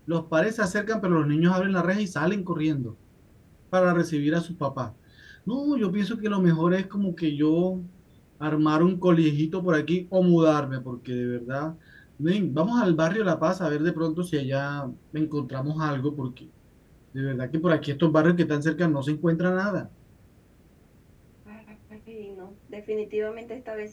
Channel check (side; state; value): both; identical; correlation 1.00